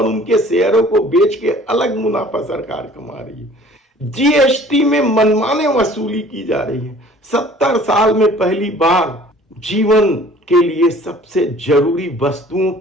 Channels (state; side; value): normal; both; correlation 0.51